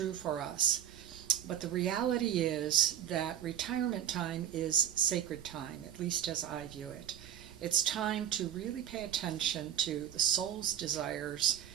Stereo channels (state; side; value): quieter; left; 10.5 dB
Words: for us. But the reality is that retirement time is sacred time, at least as I view it. It's time to really pay attention to the soul's desires